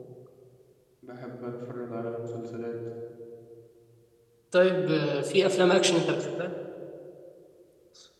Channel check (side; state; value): both; identical; correlation 1.00